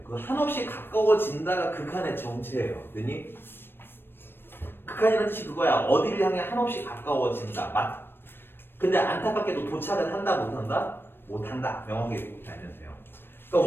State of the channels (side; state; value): right; late; 0.10 ms